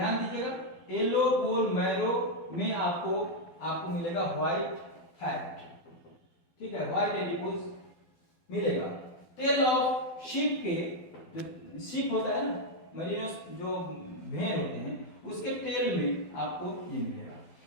दीजिएगा, येलो बोन मैरो में आपको मिलेगा व्हाइट फैट। ठीक है, व्हाइट एडिपोज मिलेगा। टेल ऑफ शीप के, जो शीप होता है ना, मरीनोस जो भेड़ होते हैं, उसके टेल में आपको ये मिलेगा।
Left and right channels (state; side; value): late; right; 12 ms